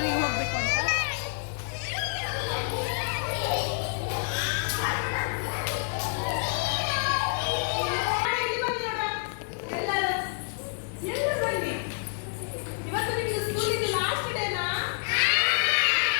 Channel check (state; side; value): silent; right; digital silence